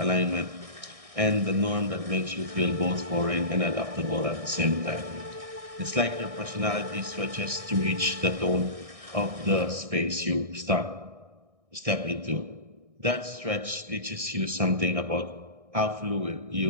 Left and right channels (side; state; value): left; late; 1.6 ms